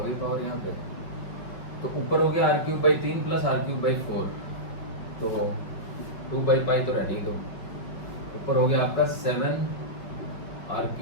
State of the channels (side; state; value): right; late; 5.4 ms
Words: गई पावर यहाँ पे। तो ऊपर हो गया R cube by 3 plus R cube by 4, तो 2/पाई तो रहने ही दो। ऊपर हो गया आपका